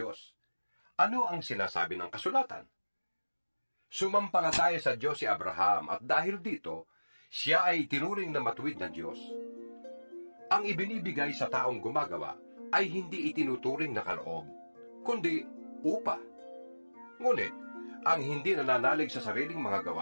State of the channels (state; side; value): inverted; both; correlation -1.00